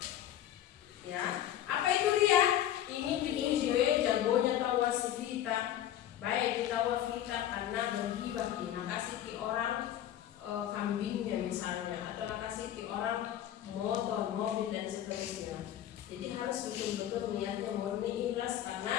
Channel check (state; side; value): quieter; right; 11.7 dB